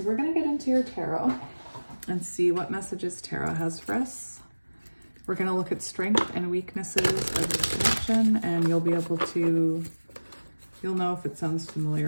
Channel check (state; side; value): inverted; both; correlation -1.00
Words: we're going to get into your tarot and see what messages tarot has for us. We're going to look at strength and weaknesses of this connection, and you'll be able to, you'll know if it sounds